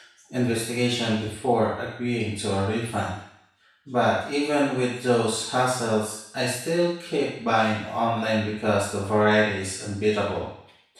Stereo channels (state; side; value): identical; both; correlation 1.00